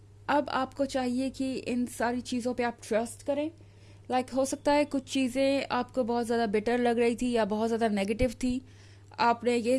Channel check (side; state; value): both; identical; correlation 1.00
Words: अब आपको चाहिए कि इन सारी चीज़ों पे आप ट्रस्ट करें। हो सकता है कुछ चीज़ें आपको बहुत ज़्यादा बिटर लग रही थी या बहुत ज़्यादा नेगेटिव थी। आपने